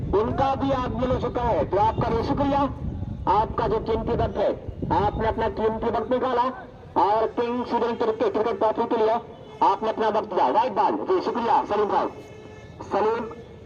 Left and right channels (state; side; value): identical; both; correlation 1.00